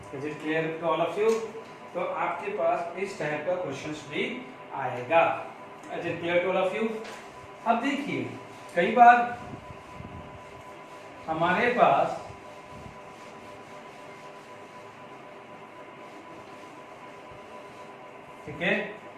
Is it clear to all of you. तो आपके पास इस टाइप का क्वेश्चंस भी आएगा। Is it clear to all of you. अब देखिए कई बार हमारे पास ठीक है।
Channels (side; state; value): both; identical; correlation 1.00